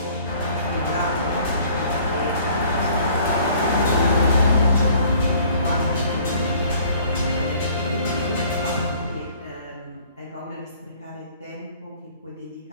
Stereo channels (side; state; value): both; inverted; correlation -0.54